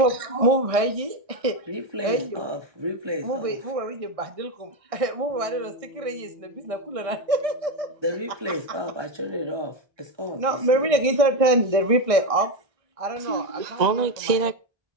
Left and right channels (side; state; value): left; late; 1.6 ms